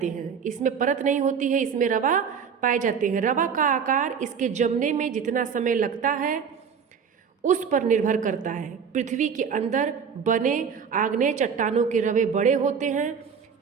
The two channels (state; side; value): quieter; left; 6.8 dB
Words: हैं। इसमें परत नहीं होती है, इसमें रवा पाए जाते हैं। रवा का आकार इसके जमने में जितना समय लगता है उस पर निर्भर करता है। पृथ्वी के अंदर बने आग्नेय चट्टानों के रवे बड़े होते हैं